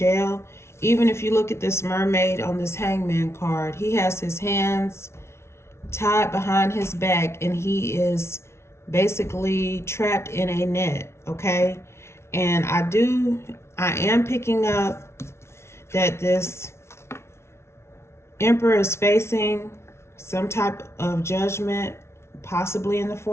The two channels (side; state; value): right; late; 0.13 ms